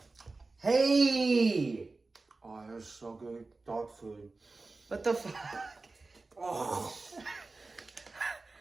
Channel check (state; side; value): quieter; left; 3.6 dB